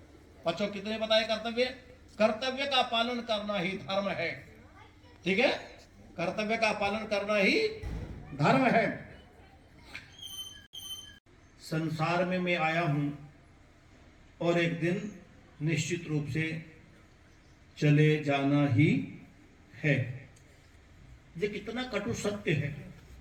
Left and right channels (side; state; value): both; identical; correlation 1.00